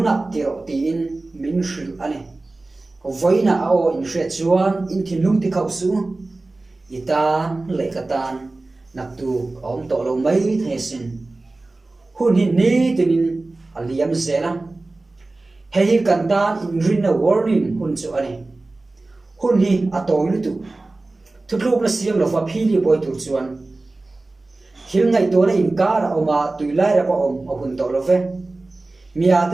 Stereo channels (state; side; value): quieter; left; 3.1 dB